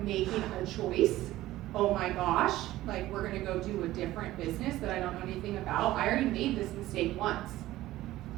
making a choice. Oh my gosh, like we're gonna go do a different business that I don't know anything about. I already made this mistake once.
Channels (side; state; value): left; quieter; 15.8 dB